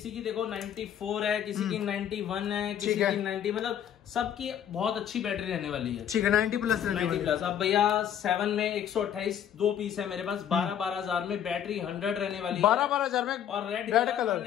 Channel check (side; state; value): right; quieter; 9.6 dB